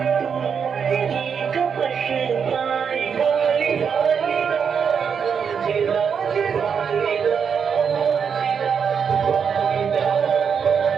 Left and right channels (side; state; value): left; quieter; 6.8 dB